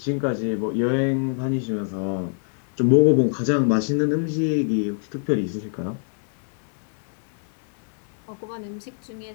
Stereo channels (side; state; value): right; silent; 62 dB below the other